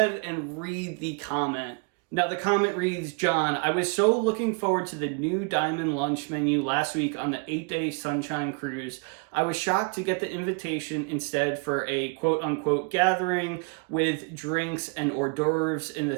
and read the comment. Now, the comment reads, John, I was so looking forward to the new Diamond Lunch menu last week on the 8-day Sunshine Cruise. I was shocked to get the invitation instead for a quote-unquote gathering with drinks and hors d'oeuvres in the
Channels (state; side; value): quieter; left; 36.1 dB